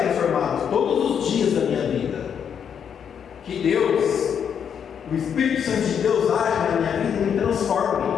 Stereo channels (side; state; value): right; quieter; 7.8 dB